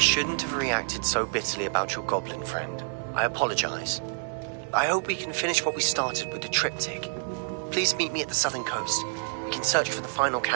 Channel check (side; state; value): left; silent; digital silence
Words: shouldn't have reacted so bitterly about your goblin friend. I apologize. I hope we can finish what we started with the triptych. Please meet me at the southern coast. We can search for the final